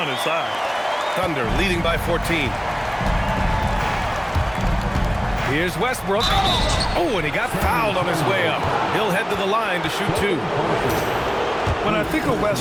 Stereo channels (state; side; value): identical; both; correlation 1.00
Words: inside. Thunder leading by 14. Here's Westbrook. Oh, and he got fouled on his way up. He'll head to the line to shoot 2. When I think of